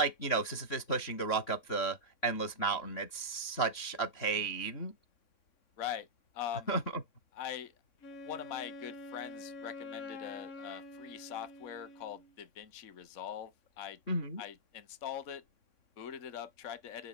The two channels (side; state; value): right; late; 3.6 ms